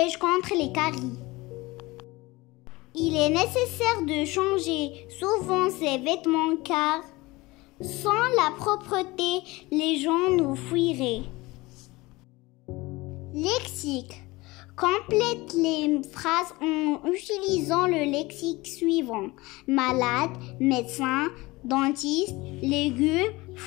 contre les caries. Il est nécessaire de changer souvent ses vêtements car sans la propreté, les gens nous fuiraient. Lexique. Complète les phrases en utilisant le lexique suivant. Malade, médecin, dentiste, légumes,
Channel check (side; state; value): right; quieter; 21.7 dB